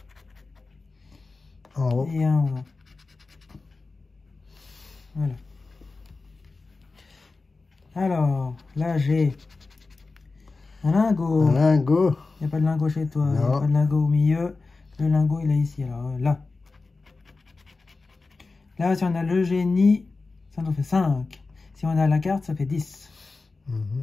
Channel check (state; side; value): quieter; right; 3.8 dB